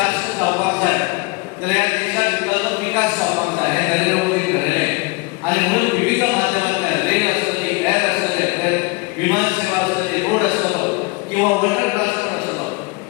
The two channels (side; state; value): right; quieter; 26.9 dB